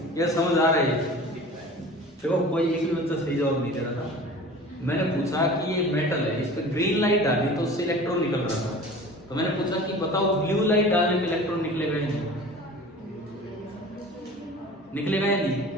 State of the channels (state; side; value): normal; both; correlation 0.40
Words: ये समझ आ रही है? देखो कोई एक भी बच्चा सही जवाब नहीं दे रहा था। मैंने पूछा कि ये मेटल है, इस पे ग्रीन लाइट डाली तो उससे इलेक्ट्रॉन निकल रहा था, तो मैंने पूछा कि बताओ ब्लू लाइट डालने पे इलेक्ट्रॉन निकलेगा या नहीं? निकलेगा या नहीं?